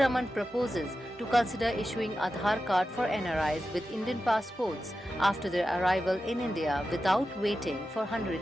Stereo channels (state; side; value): normal; both; correlation 0.92